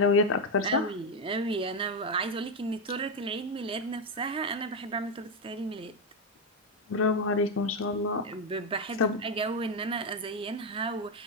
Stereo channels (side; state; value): both; normal; correlation 0.06